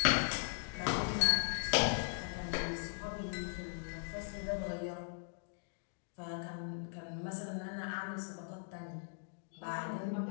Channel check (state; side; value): silent; right; digital silence